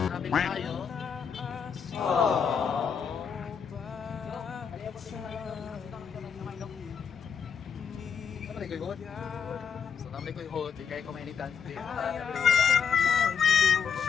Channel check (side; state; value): right; quieter; 6.9 dB